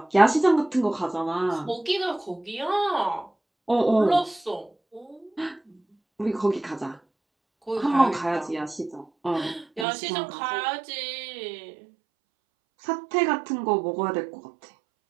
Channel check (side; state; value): left; drops out; at 9.9 s